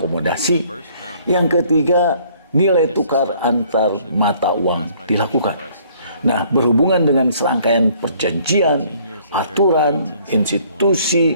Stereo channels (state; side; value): inverted; both; correlation -0.60